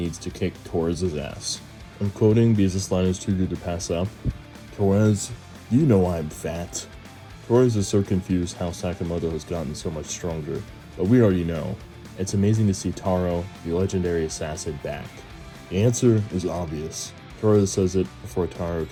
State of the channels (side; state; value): both; identical; correlation 1.00